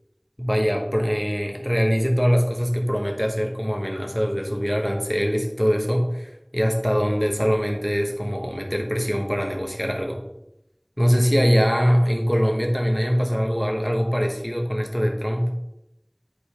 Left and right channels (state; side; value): identical; both; correlation 1.00